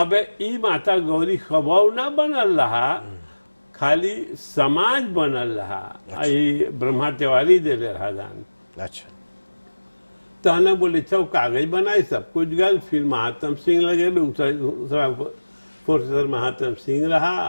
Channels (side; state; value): both; inverted; correlation -1.00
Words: ई माता गौरी खबाव ना बनल रहा, खाली समाज बनल रहा। आई ब्रह्मा तिवारी दे रहा दान। अच्छा तो हमने बोले अच्छा कागज बनाए सब कुछ गल। फिर महात्म सिंह लगे प्रोफेसर महात्म सिंह